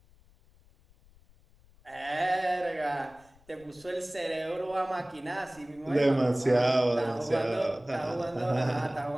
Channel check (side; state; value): left; noise; rumble, 28 dB below the sound